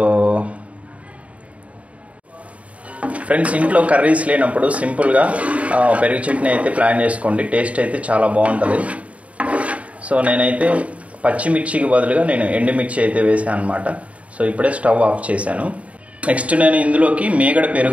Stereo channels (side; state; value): left; late; 0.066 ms